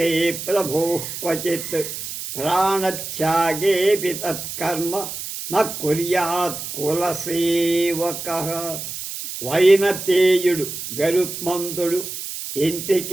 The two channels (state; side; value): noise; right; hiss, 8 dB below the sound